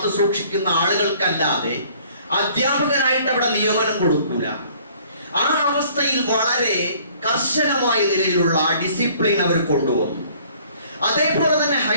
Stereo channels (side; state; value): both; inverted; correlation -0.56